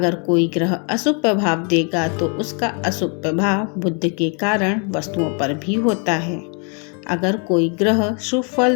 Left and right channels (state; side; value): quieter; right; 37.6 dB